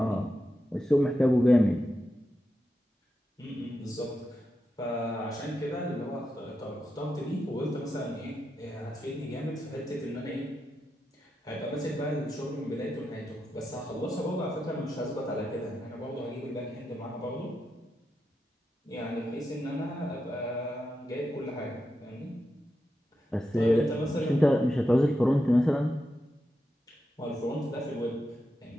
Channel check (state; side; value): normal; both; correlation 0.87